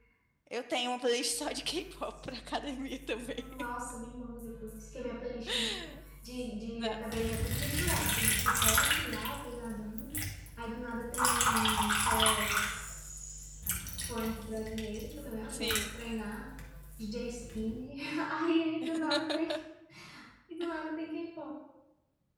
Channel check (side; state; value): both; identical; correlation 1.00